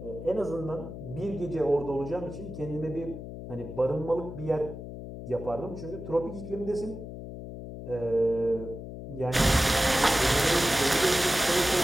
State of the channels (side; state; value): left; noise; hum, 10 dB below the sound